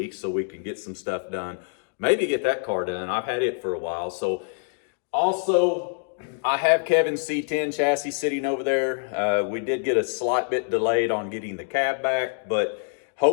so we can get some stuff done. Maybe get that car done. I've had it for a while. So also, I have Kevin's C10 chassis sitting over there. We did get a slight bit delayed on getting the cab back, but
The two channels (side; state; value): right; silent; digital silence